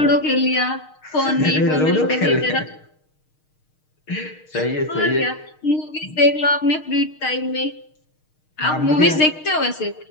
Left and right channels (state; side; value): late; right; 6.5 ms